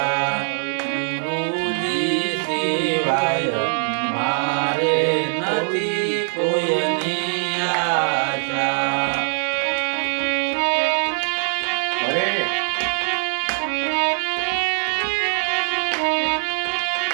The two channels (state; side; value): silent; left; digital silence